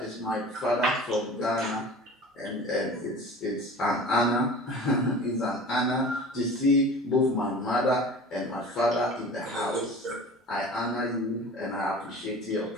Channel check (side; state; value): both; normal; correlation 0.40